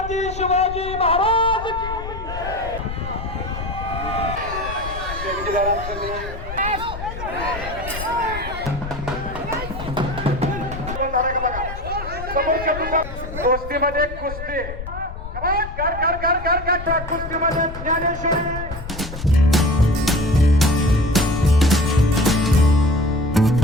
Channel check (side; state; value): left; noise; rumble, 9 dB below the sound